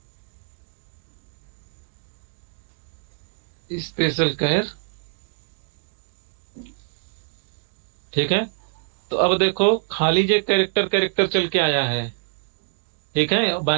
स्पेशल केयर, ठीक है। तो अब देखो खाली जो कैरेक्टर कैरेक्टर चल के आया है, ठीक है,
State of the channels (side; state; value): left; silent; 62 dB below the other